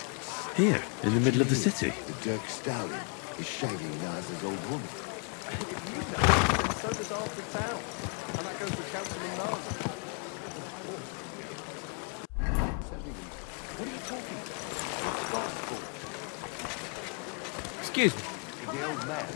Here, in the middle of the city. Excuse me. The old man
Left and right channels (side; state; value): right; quieter; 36.5 dB